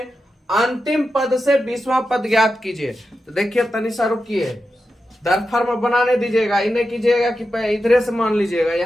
अंतिम पद से 20वां पद ज्ञात कीजिए। तो देखिए तनिषा रुकिए, दरफर्म बनाने दीजिएगा, इन्हें कीजिएगा कि इधरे से मान लीजिएगा।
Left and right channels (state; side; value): normal; both; correlation 0.90